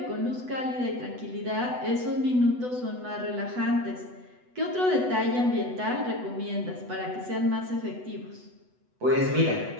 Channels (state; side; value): late; left; 8.1 ms